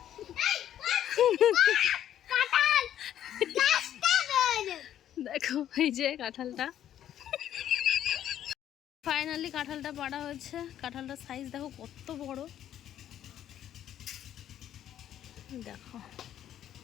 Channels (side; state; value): right; quieter; 11.0 dB